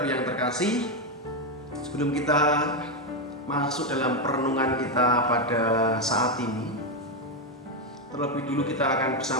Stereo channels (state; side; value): normal; both; correlation 0.06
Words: yang terkasih, sebelum kita masuk dalam perenungan kita pada saat ini, terlebih dulu kita akan